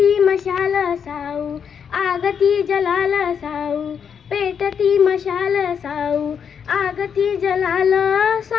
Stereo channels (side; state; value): right; quieter; 7.3 dB